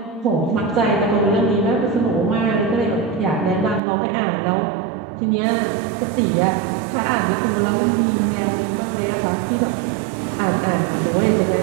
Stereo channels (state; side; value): drops out; left; at 3.8 s